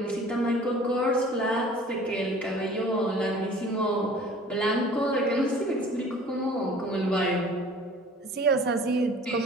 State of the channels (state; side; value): normal; both; correlation 0.47